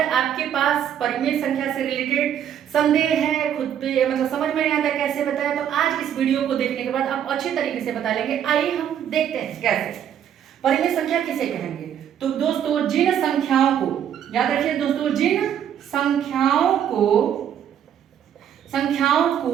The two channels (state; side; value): quieter; left; 9.6 dB